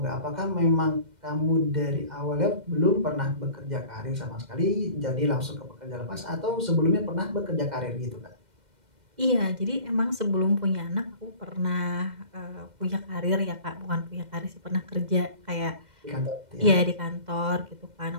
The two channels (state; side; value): late; left; 2.1 ms